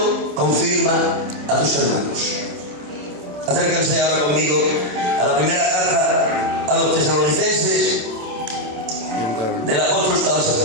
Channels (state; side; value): late; left; 27 ms